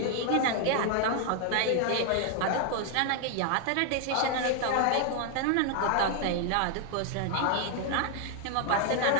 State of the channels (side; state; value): both; different; correlation 0.00